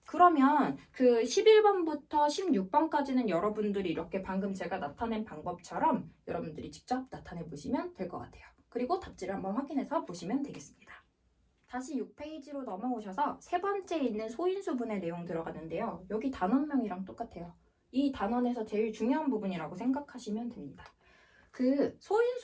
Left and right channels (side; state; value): both; identical; correlation 1.00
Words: 그러면 11번부터 16번까지는 여러분들이 이렇게 방금 제가 나타낸 방법처럼 여러분들이 직접 나타내 보시면 될 것 같아요. 그리고 답지를 한번 확인해서 보시면 되겠습니다. 다시 6페이지로 넘어오셔서 세 번째 있는 소인수분의 내용 들어가는데요. 여기 단원명이랑 똑같아요. 이 단원에서 제일 중요한 부분이라고 생각하시면 됩니다.